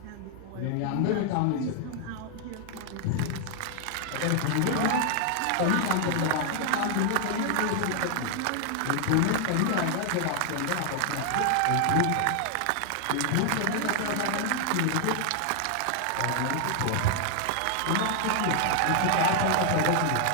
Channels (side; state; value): both; different; correlation 0.00